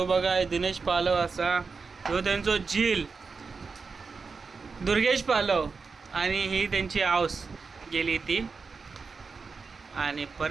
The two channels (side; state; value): left; quieter; 4.8 dB